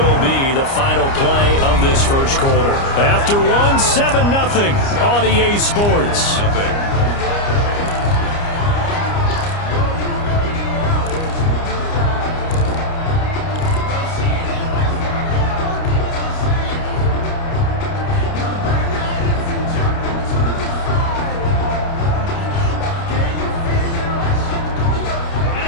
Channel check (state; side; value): late; right; 29 ms